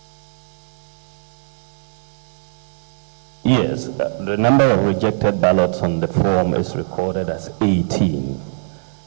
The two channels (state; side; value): silent; left; digital silence